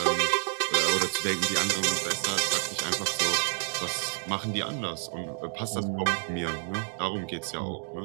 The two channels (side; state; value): left; silent; digital silence